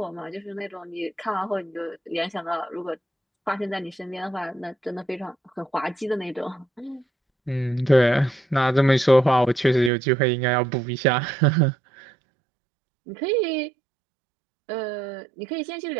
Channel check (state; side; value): drops out; left; at 9.9 s